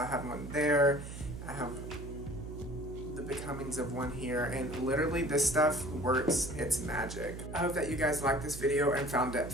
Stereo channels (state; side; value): noise; right; hum, 10 dB below the sound